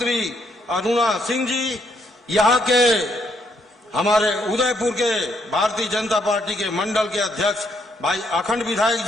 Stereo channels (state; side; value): normal; both; correlation 0.73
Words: अरुणा सिंह जी, यहाँ के हमारे उदयपुर के भारतीय जनता पार्टी के मंडल के अध्यक्ष भाई अखंड विधायक